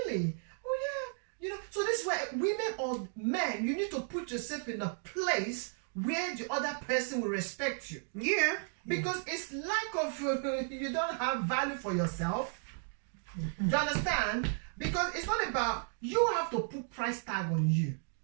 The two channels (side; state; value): left; silent; 55 dB below the other